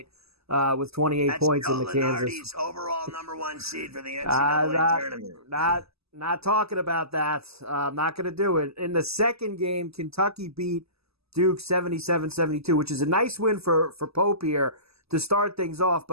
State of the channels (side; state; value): left; late; 0.78 ms